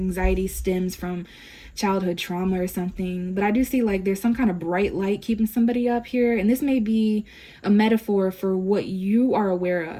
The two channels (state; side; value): identical; both; correlation 1.00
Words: stems from childhood trauma or something. But I do see like there's some kind of bright light keeping somebody up here, and this may be a metaphor for what you are aware